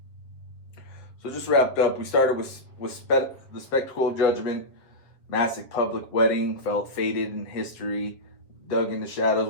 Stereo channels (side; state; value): right; late; 7.6 ms